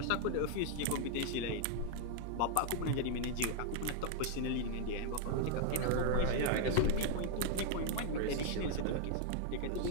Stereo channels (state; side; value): different; both; correlation 0.00